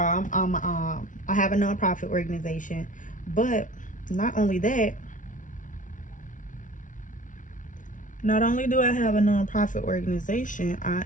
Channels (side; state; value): right; late; 0.37 ms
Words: I have a nonprofit organization, but not only that, not only do I have a nonprofit organization, I